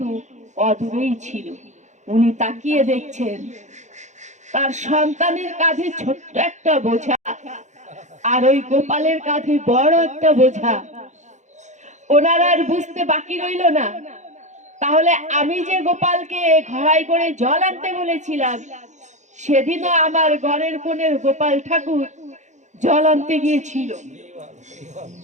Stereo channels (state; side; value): late; left; 0.34 ms